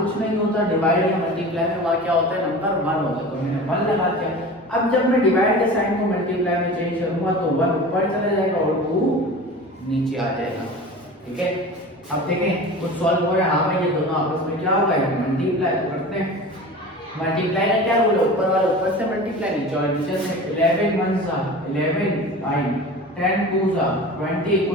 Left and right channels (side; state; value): both; normal; correlation 0.35